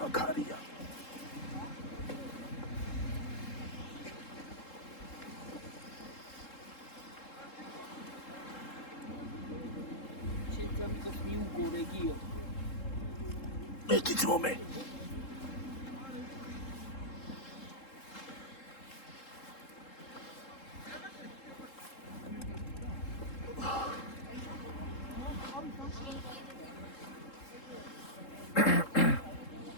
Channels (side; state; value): right; late; 3.7 ms